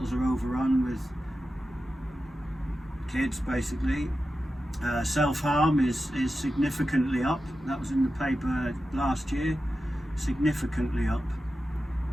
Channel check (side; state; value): both; normal; correlation 0.92